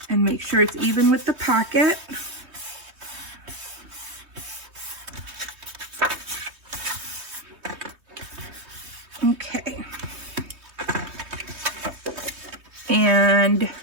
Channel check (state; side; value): late; left; 3.2 ms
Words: and make sure it's even with the pocket. Okay. And